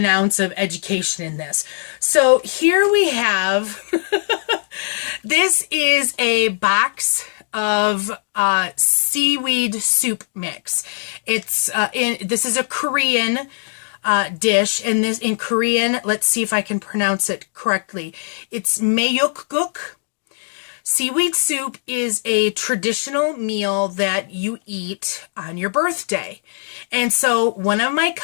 ounce of education in this. So here we have, this is a box of seaweed soup mix. This is a Korean dish, and this in Korean, let's see if I can pronounce it correctly. It's mayukguk. Seaweed soup is a traditional meal that you eat on your birthday. And so one of my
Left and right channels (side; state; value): right; silent; digital silence